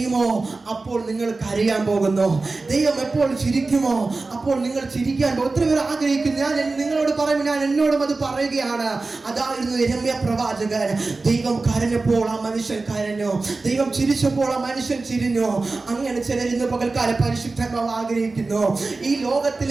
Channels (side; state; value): left; quieter; 3.6 dB